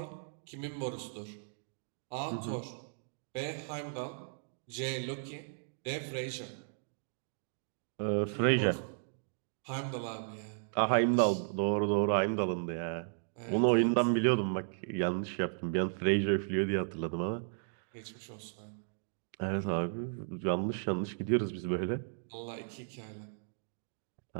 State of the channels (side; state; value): left; silent; digital silence